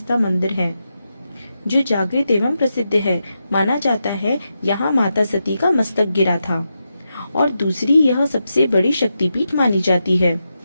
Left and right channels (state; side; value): inverted; both; correlation -0.87